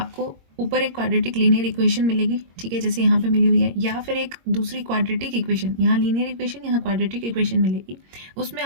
ऊपर एक क्वाड्रेटिक लीनियर इक्वेशन मिलेगी, ठीक है, जैसे यहाँ पे मिली हुई है, या फिर एक दूसरी क्वाड्रेटिक इक्वेशन, यहाँ लीनियर इक्वेशन, यहाँ क्वाड्रेटिक इक्वेशन मिलेगी, उसमें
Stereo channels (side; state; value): left; late; 22 ms